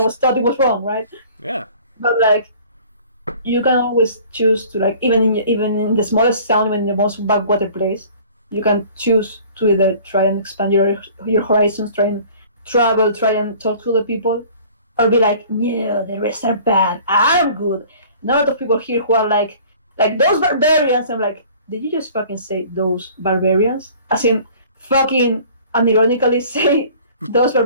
was taught it was wrong, right? Yeah. But like you can always choose to like even in the smallest town, even in the most backwater place, you can choose to either try and expand your horizons, try and travel, try and talk to other people, or be like, "No, the rest are bad. I'm good." And a lot of people here who are like those barbarians. I'm like, did you just fucking say those barbarians? As in, fucking unironically say those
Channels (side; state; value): both; inverted; correlation -0.49